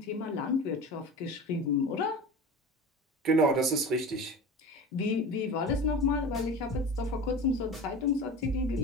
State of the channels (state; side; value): normal; both; correlation 0.32